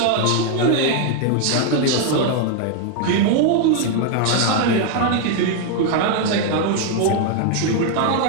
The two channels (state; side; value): different; both; correlation 0.01